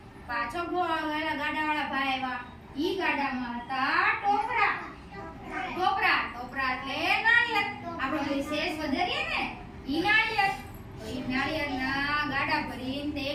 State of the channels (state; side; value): identical; both; correlation 1.00